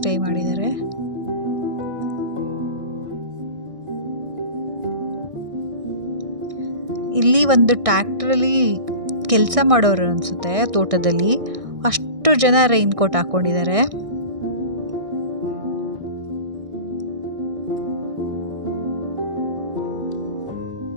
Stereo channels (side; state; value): left; late; 1.6 ms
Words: ಮಾಡಿದ್ದಾರೆ. ಇಲ್ಲಿ ಒಂದು ಟ್ರ್ಯಾಕ್ಟ್ರಲ್ಲಿ ಕೆಲಸ ಮಾಡೋರು ಅನಿಸುತ್ತೆ, ತೋಟದಲ್ಲಿ. ಅಷ್ಟು ಜನ ರೈನ್ ಕೋಟ್ ಹಾಕ್ಕೊಂಡಿದ್ದಾರೆ.